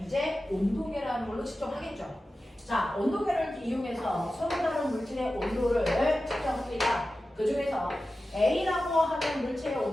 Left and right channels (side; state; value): both; normal; correlation 0.94